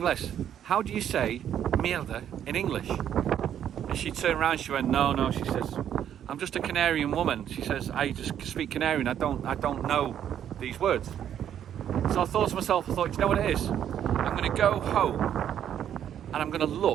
How do you say mierda in English? And she turned around, she went, no, she says, I'm just a Canarian woman. She says, I just speak Canarian. I don't know these words. So I thought to myself, you know what it is? I'm going to go home and I'm going to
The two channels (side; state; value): left; quieter; 9.9 dB